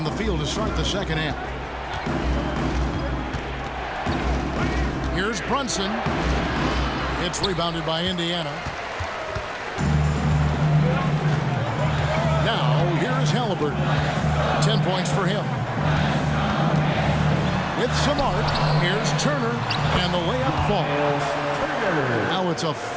the field to start the second half. Here's Brunson. It's rebounded by Indiana. Now, here's Halliburton. 10 points for him. With some arc, here's Turner, and the layup falls. Now it's a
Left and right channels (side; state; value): both; identical; correlation 1.00